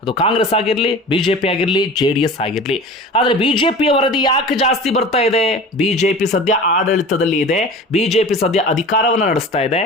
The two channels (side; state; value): both; normal; correlation 0.37